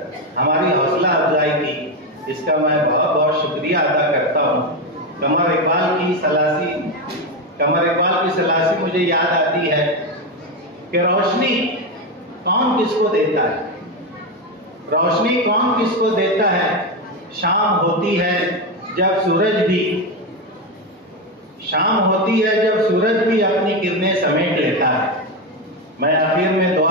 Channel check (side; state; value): both; normal; correlation 0.11